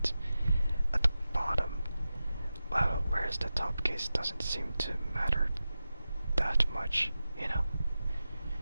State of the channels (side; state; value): both; inverted; correlation -0.93